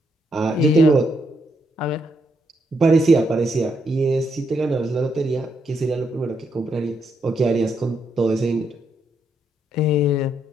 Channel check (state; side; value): normal; both; correlation 0.77